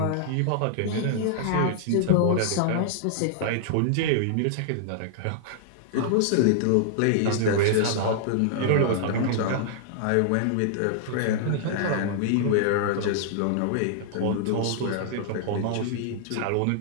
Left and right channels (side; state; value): both; different; correlation -0.01